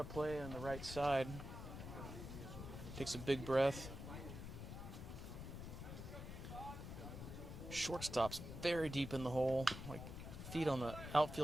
play on the right side. Takes a big breath. Shortstop's very deep in the hole, like feet on the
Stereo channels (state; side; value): noise; left; rumble, 8 dB below the sound